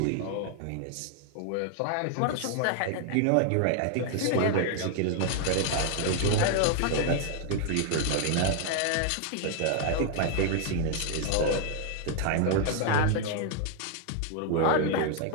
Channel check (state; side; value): different; both; correlation 0.00